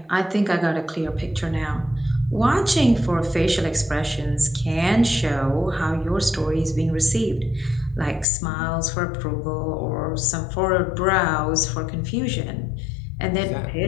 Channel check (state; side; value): drops out; right; at 8.2 s